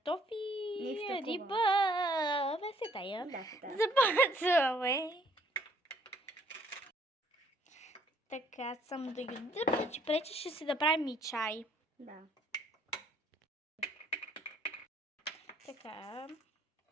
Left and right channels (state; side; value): normal; both; correlation 0.63